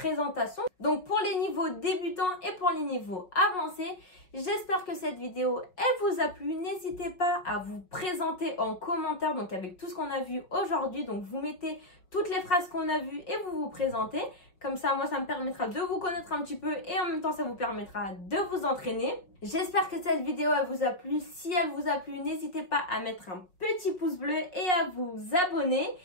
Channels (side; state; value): right; late; 5.3 ms